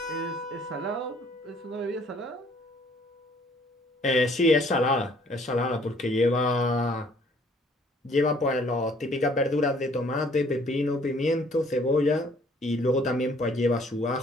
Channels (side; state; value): both; normal; correlation 0.60